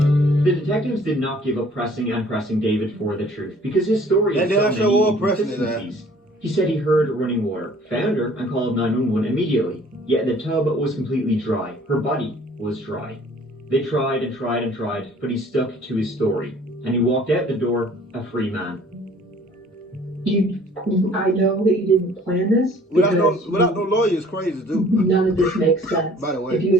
The detectives did not give up pressing David for the truth, because his story And had then I so show many up pressing his ass. inconsistencies. He said he heard running water, found her, and called 911 immediately. Yet the tub was completely dry. Her body was dry. They tried and tried and tried, but he stuck to his story, and he walked out the door a free man. I know that you didn't plan this. Without no lawyer is crazy too. None of this makes sense. By the way. If you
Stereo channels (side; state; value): both; normal; correlation 0.54